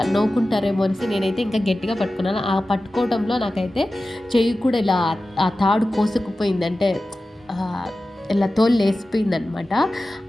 నవ్వుకుంటారేమో అనేసి నేనైతే ఇంకా గట్టిగా పట్టుకున్నాను. ఆ పట్టుకోవడంలో నాకైతే చెయ్యి కూడా ఇలా ఆ తాడు కోసుకుపోయింది. అంటే ఆహ్, ఇలా తోలు లేసిపోయిందనమాట.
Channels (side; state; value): both; normal; correlation 0.95